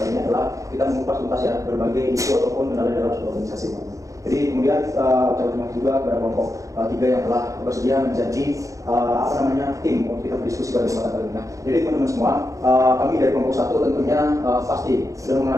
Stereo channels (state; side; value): late; left; 0.16 ms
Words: ini adalah kita mengupas tuntas ya berbagai isu ataupun kendala dalam suatu organisasi. Jadi kemudian ucapan terima kasih juga kepada kelompok 3 yang telah bersedia menjadi tim untuk kita berdiskusi pada kesempatan kali ini. Nah, jadi teman-teman semua, kami dari kelompok 1 tentunya pasti sudah